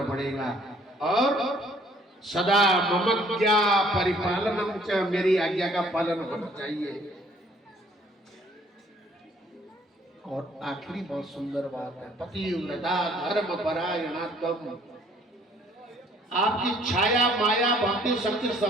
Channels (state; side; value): normal; both; correlation 0.60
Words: पड़ेगा। और सदा ममज्ञा परिपालनम च, मेरी आज्ञा का पालन होना चाहिए। और आखिरी बहुत सुंदर बात है, पतिव्रता धर्म परायणात्म, आपकी छाया माया भक्ति शक्ति